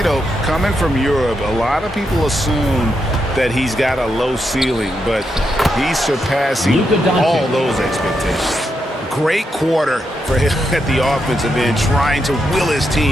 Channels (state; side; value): normal; both; correlation 0.83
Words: know, coming from Europe, a lot of people assume that he's got a low ceiling, but he's surpassing all those expectations. Great quarter for him at the offensive end, trying to will his